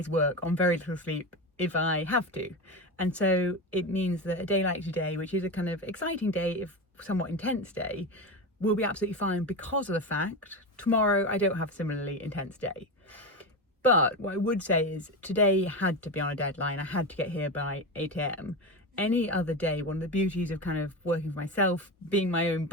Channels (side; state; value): both; normal; correlation 0.20